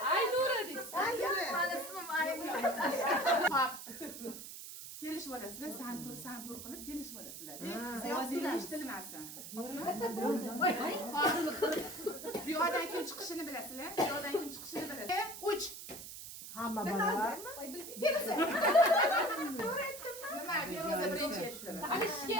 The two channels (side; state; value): right; noise; hiss, 11 dB below the sound